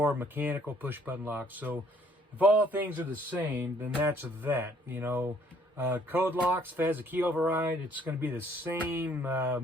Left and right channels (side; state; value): both; normal; correlation 0.62